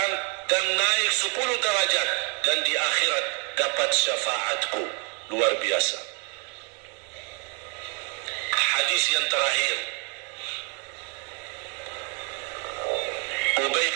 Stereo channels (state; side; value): quieter; left; 36.4 dB